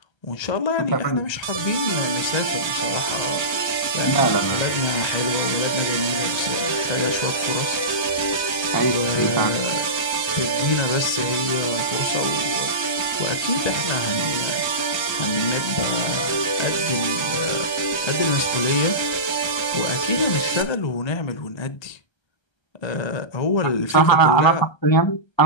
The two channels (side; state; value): right; late; 1.3 ms